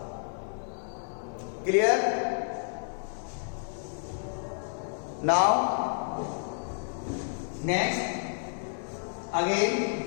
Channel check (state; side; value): silent; right; 58 dB below the other